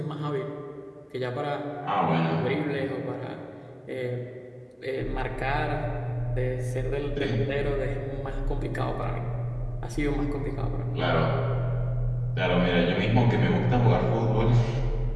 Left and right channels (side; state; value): both; identical; correlation 1.00